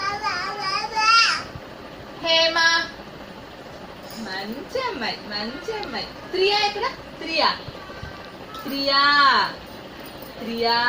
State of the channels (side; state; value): both; identical; correlation 1.00